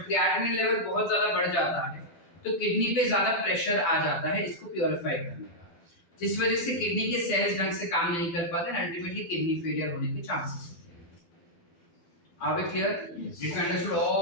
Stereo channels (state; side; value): late; right; 12 ms